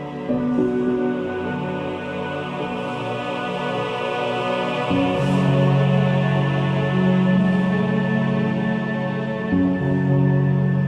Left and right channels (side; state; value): both; identical; correlation 1.00